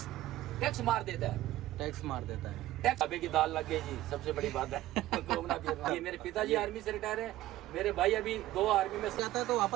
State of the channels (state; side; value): quieter; left; 15.2 dB